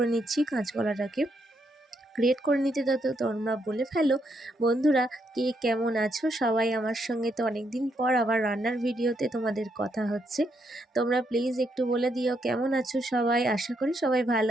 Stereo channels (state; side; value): normal; both; correlation 0.77